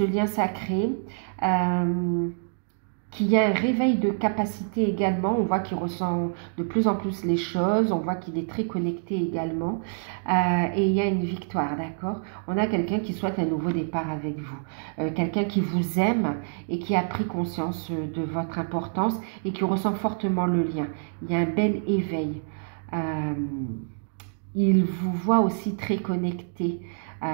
lien sacré, qu'il y a un réveil de capacité également, on voit qu'il ressent de plus en plus les choses, on voit qu'il est très connecté également, et il y a une victoire, d'accord? On a quelqu'un qui souhaite un nouveau départ avec vous, quelqu'un qui vous aime et qui a pris conscience de votre importance et qui ressent fortement le lien. Il y a un bel éveil. Il vous voit aussi très connecté,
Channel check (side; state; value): left; silent; digital silence